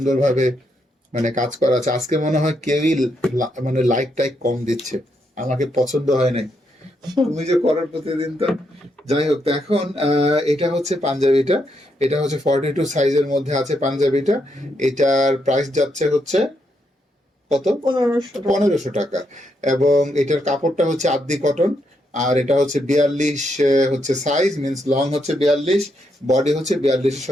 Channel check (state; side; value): normal; both; correlation 0.79